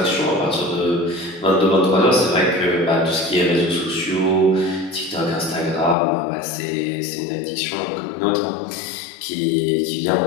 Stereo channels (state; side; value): drops out; right; at 6.0 s